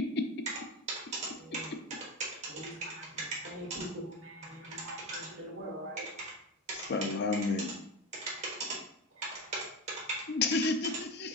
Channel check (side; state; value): both; normal; correlation 0.21